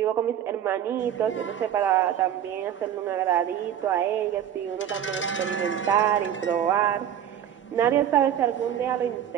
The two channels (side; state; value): left; quieter; 9.8 dB